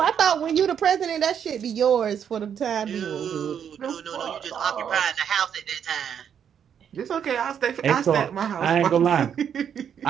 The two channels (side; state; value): left; quieter; 8.3 dB